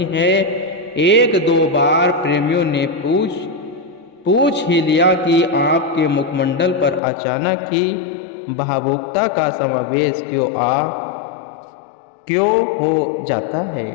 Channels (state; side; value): drops out; right; at 7.0 s